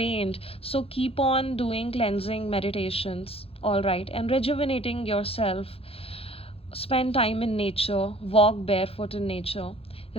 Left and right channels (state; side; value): late; right; 0.28 ms